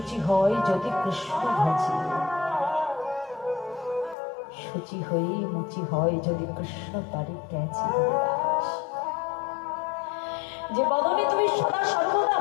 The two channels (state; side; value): drops out; right; at 4.2 s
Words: হয় যদি কৃষ্ণ ভজে, শুচি হয়ে মুচি হয় যদি কৃষ্ণ তারে ক্যাচে। হরিদাস, যে বদনে তুমি সদা সর্বদা